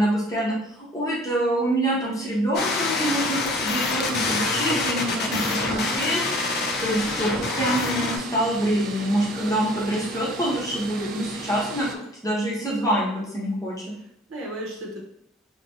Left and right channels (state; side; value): normal; both; correlation 0.50